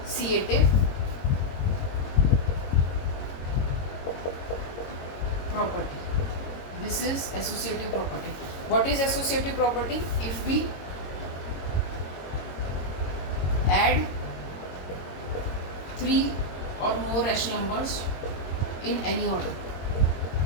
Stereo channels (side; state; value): right; late; 22 ms